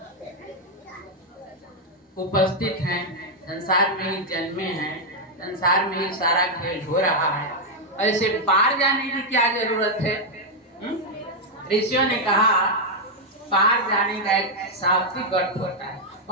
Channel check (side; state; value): both; normal; correlation -0.02